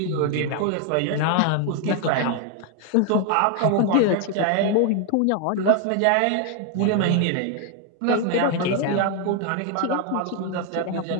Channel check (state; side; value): different; both; correlation 0.00